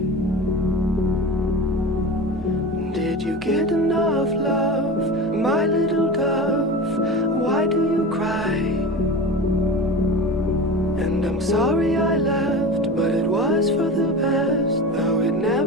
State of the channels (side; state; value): both; normal; correlation 0.30